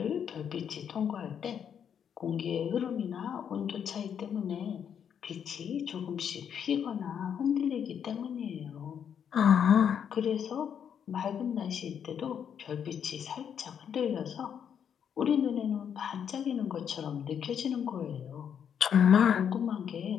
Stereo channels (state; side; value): quieter; right; 8.2 dB